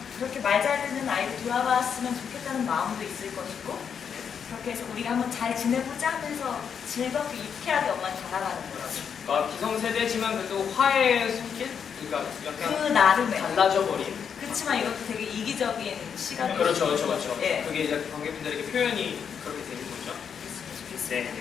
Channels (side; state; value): right; quieter; 7.3 dB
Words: 그렇게 말 잘 듣는 아이를 돌아봤으면 좋겠다는 마음도 있을 것이고 그렇게 해서 우리가 한번 잘 지내보자 하면서 즐겁게 유쾌하게 엄마는 다가가는 거죠. 그러니까 기성세대지만 그래도 화해의 손길? 그러니까 약간 그 나름의. 달라져 버린. 그렇지만 이것도 되게 이기적인 시간이 그렇죠, 그렇죠, 그렇죠. 예. 그게 이제 관객분들에게 표현이 그렇게 되는 거죠. 네, 네,